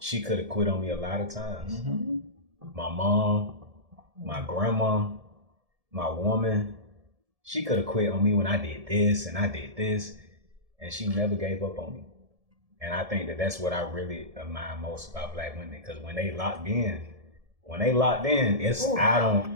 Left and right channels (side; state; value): left; late; 1.7 ms